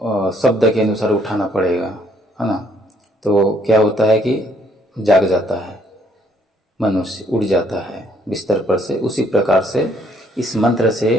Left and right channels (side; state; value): both; normal; correlation 0.67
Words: शब्द के अनुसार उठाना पड़ेगा, है ना। तो क्या होता है कि जाग जाता है, मनुष्य उड़ जाता है बिस्तर पर से। उसी प्रकार से इस मंत्र से